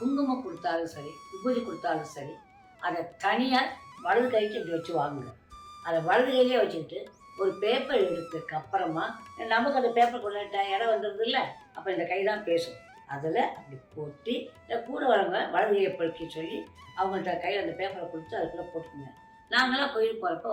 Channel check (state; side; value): identical; both; correlation 1.00